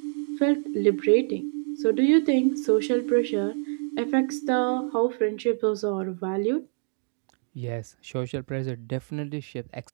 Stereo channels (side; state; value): left; silent; 61 dB below the other